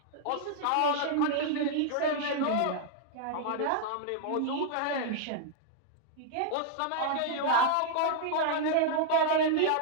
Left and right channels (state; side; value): different; both; correlation -0.01